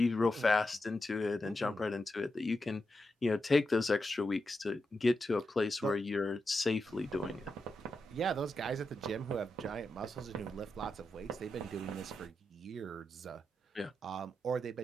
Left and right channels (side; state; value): both; normal; correlation 0.87